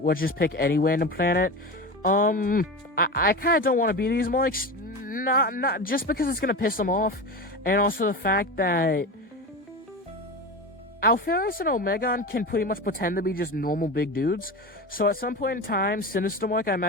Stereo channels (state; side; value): normal; both; correlation 0.25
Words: let's just pick any random planet. I kind of don't want to be these Moiks, not just because it's gonna piss them off, and also the fact that Ferris and Omegon can pretty much pretend to be just normal big dudes. So at some point in time, Sinister Mark, I